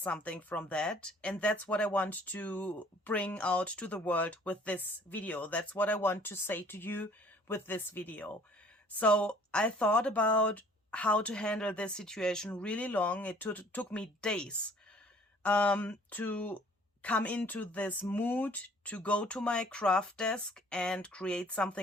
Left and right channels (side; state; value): both; normal; correlation 0.55